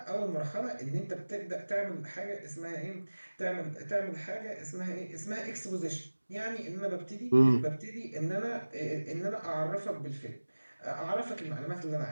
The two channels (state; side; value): inverted; both; correlation -1.00